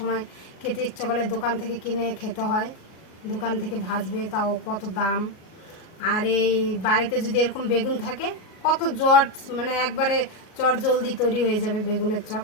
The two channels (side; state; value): right; late; 37 ms